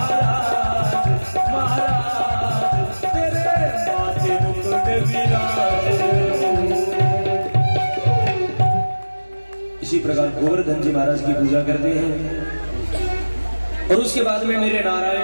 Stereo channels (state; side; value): inverted; both; correlation -1.00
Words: महाराज तेरे माथे मुकुट विराज। इसी प्रकार गोवर्धन जी महाराज की पूजा करते हैं और उसके बाद में मेरे